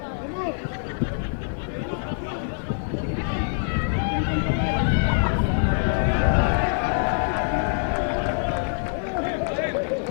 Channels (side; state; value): right; silent; digital silence